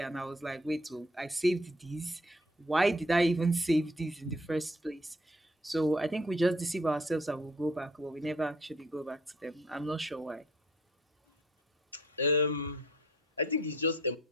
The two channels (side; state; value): both; normal; correlation 0.60